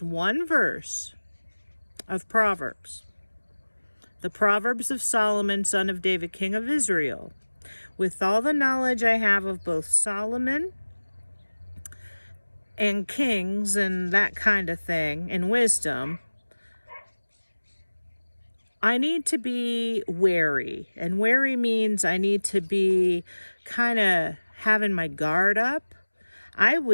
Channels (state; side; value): inverted; both; correlation -1.00